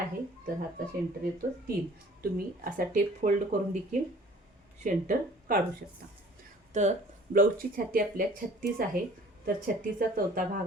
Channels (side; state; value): both; normal; correlation 0.51